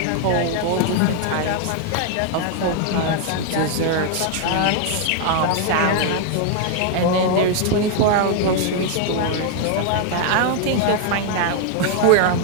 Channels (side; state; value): both; different; correlation 0.00